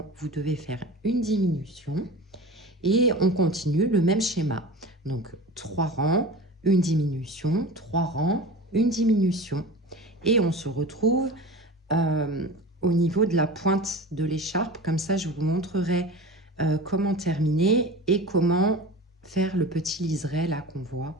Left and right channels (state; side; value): normal; both; correlation 0.34